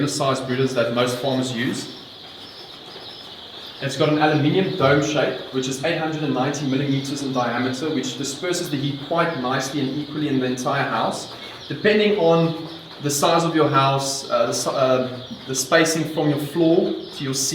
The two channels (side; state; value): both; identical; correlation 1.00